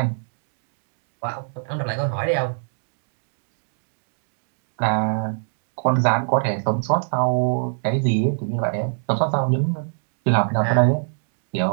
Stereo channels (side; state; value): left; silent; digital silence